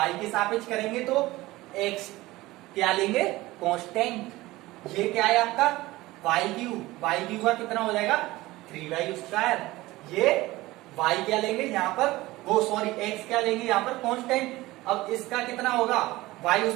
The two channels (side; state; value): left; quieter; 18.8 dB